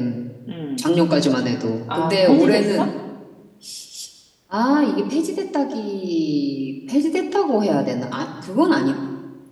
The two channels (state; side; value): identical; both; correlation 1.00